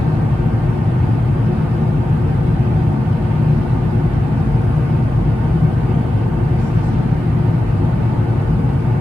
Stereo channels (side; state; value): both; normal; correlation 0.93